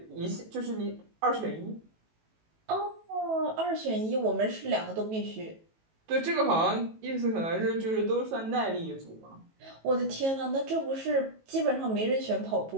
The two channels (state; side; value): late; left; 18 ms